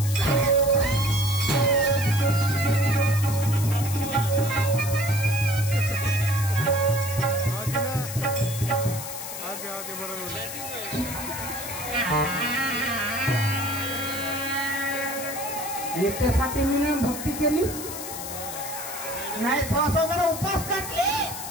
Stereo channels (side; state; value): left; noise; hiss, 8 dB below the sound